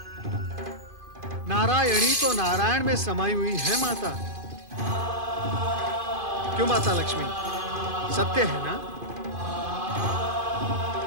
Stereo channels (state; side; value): late; left; 2.5 ms